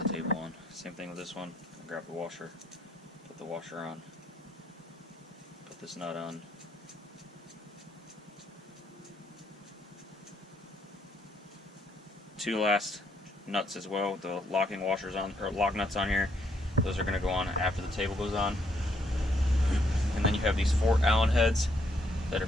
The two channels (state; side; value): normal; both; correlation 0.72